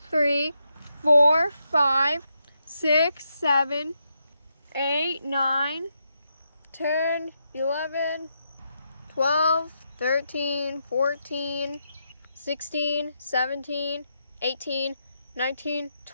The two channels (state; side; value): inverted; both; correlation -0.82